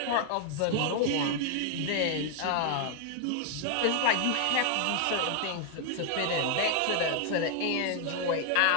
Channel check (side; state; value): both; different; correlation 0.00